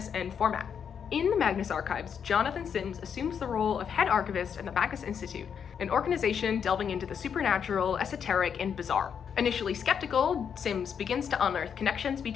and format. In the Magnus archives, Jonathan Sims assumes the role of head archivist at the Magnus Institute, an organization delving into the supernatural, esoteric, and bizarre. Initially skeptical, Sims begins to unearth connections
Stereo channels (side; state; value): right; quieter; 7.5 dB